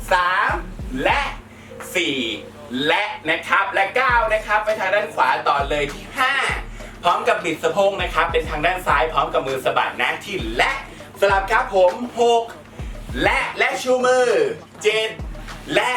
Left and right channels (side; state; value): both; identical; correlation 1.00